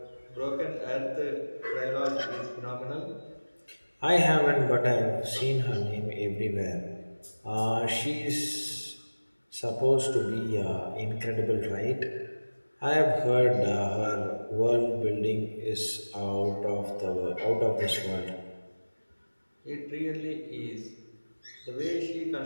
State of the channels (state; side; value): inverted; both; correlation -1.00